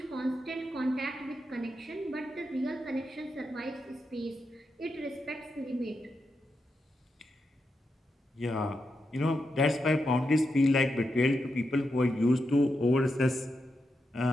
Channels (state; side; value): normal; both; correlation 0.86